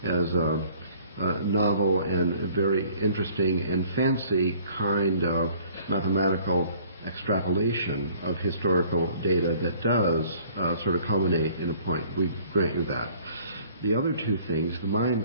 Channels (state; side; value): inverted; both; correlation -0.55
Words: as a novel and very interesting and fancy kind of mathematical extrapolation of historical data that does sort of culminate in a point. We grant you that. The other two things, the Mayan